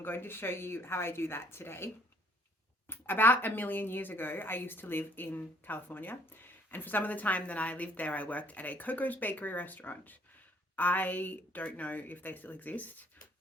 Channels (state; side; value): normal; both; correlation 0.61